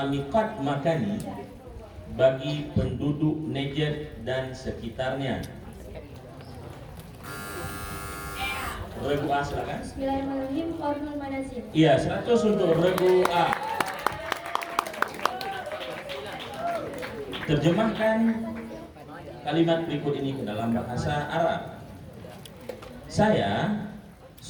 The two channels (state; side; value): identical; both; correlation 1.00